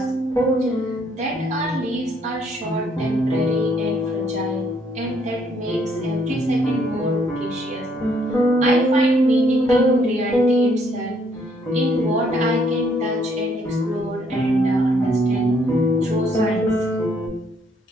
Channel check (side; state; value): both; normal; correlation 0.68